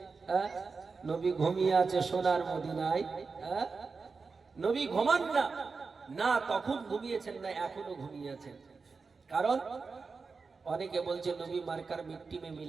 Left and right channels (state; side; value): quieter; left; 4.6 dB